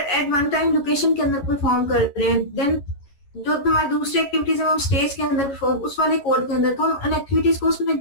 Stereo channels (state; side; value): late; right; 11 ms